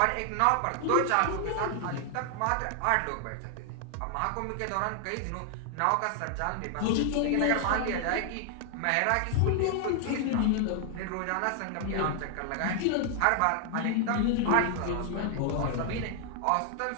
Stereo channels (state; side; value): different; both; correlation 0.00